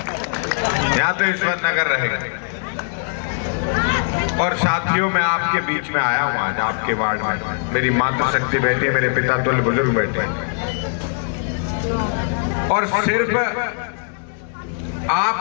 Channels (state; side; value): silent; right; 65 dB below the other